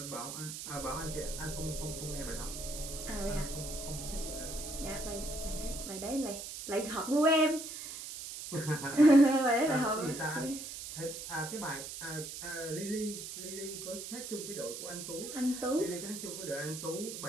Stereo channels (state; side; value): noise; right; hiss, 8 dB below the sound